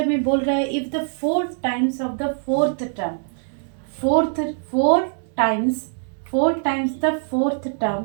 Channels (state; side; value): silent; left; digital silence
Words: में बोल रहा है if the 4 times of the fourth term, four times the fourth term